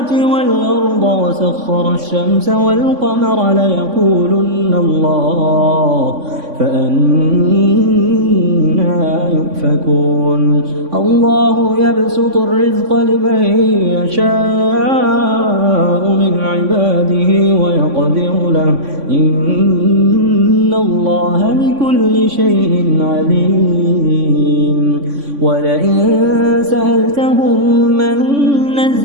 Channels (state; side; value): late; left; 3.5 ms